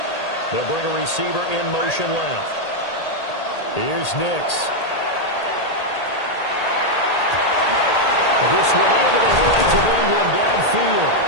They'll bring a receiver in motion left. Here's Nix. This one into the hands of Ingram downfield.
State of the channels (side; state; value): right; late; 1.8 ms